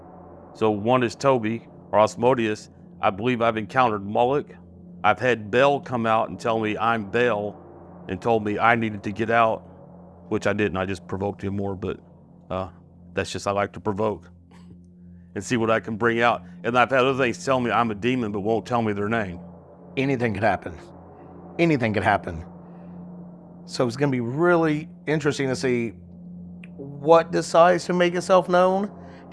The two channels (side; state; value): both; identical; correlation 1.00